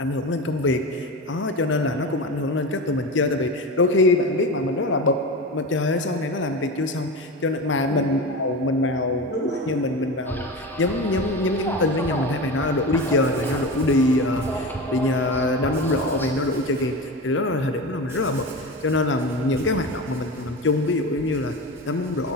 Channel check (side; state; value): both; normal; correlation 0.25